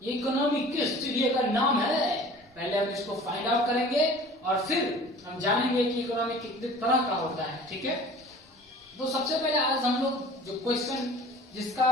ये इकोनॉमी किस चिड़िया का नाम है. पहले हम इसको फाइंड आउट करेंगे और फिर हम जानेंगे कि इकोनॉमी कितने तरह का होता है. ठीक है, तो सबसे पहले आज हम लोग जो क्वेश्चन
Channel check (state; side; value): normal; both; correlation 0.45